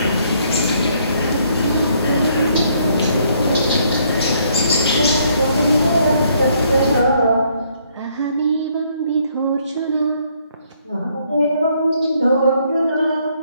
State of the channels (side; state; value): both; inverted; correlation -0.68